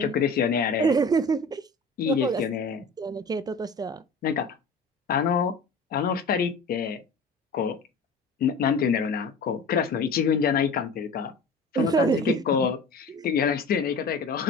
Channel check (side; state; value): right; quieter; 3.3 dB